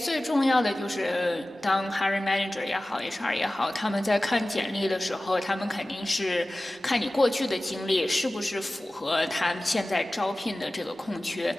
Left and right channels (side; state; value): both; normal; correlation 0.97